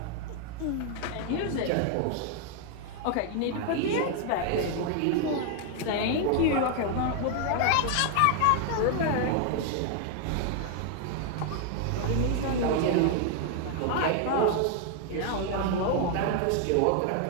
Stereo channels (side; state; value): both; different; correlation 0.00